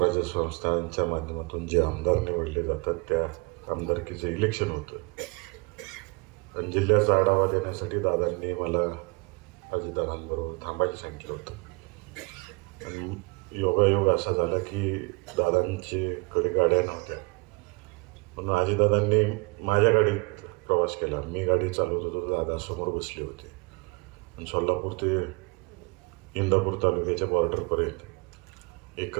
संस्थांच्या माध्यमातून जे आमदार निवडले जातात त्या आमदारकीचं इलेक्शन होतं आणि जिल्ह्याचा आढावा देण्यासाठी दादांनी मला अजितदादांबरोबर थांबायला सांगितलं होतं. आणि योगायोग असा झाला की दादांच्याकडे गाड्या नव्हत्या म्हणून अजितदादांनी माझ्या गाडीत प्रवास केला. मी गाडी चालवत होतो, दादा समोर बसले होते आणि सोलापूर ते इंदापूर तालुक्याच्या बॉर्डरपर्यंत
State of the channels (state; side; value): quieter; left; 28.7 dB